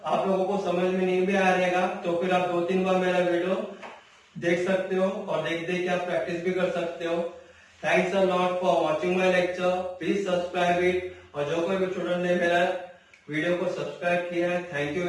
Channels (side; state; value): both; identical; correlation 1.00